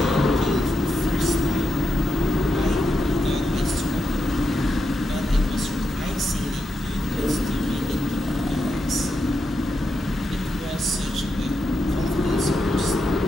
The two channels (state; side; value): normal; both; correlation 0.85